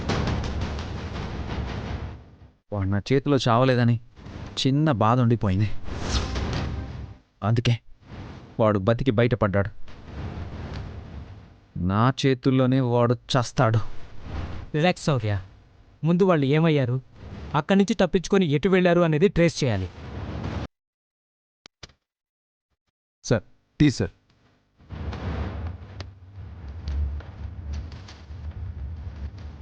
వాడు నా చేతిలో చావలేదని చిన్న బాధ ఉండిపోయింది. అందుకే వాడు బతికి బయటపడ్డాడు. నా చేతుల్లోనే వాడు చస్తాడు. రిలాక్స్ శౌర్య. ముందు వాళ్ళు ఏమయ్యారు, అక్కడి నుంచి తప్పించుకొని ఎటు వెళ్ళారు అనేది ట్రేస్ చేయాలి. Sir, tea sir.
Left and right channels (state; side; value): identical; both; correlation 1.00